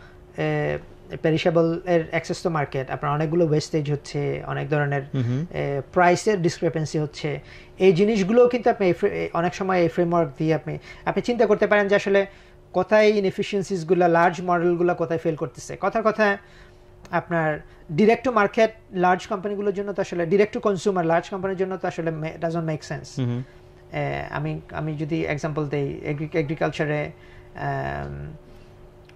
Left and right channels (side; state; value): both; identical; correlation 1.00